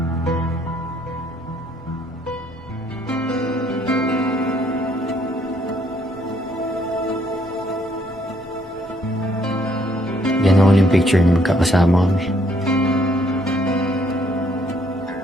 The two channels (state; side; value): normal; both; correlation 0.67